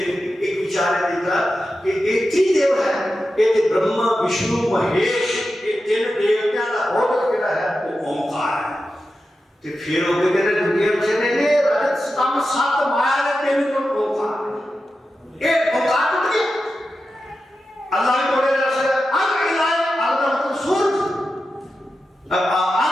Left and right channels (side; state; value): both; normal; correlation 0.91